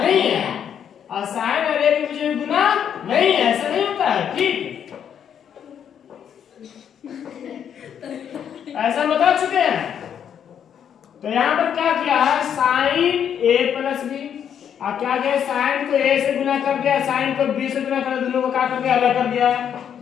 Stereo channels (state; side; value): quieter; right; 8.6 dB